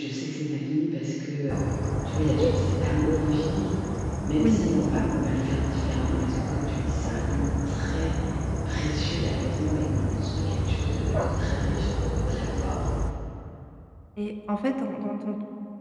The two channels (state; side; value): identical; both; correlation 1.00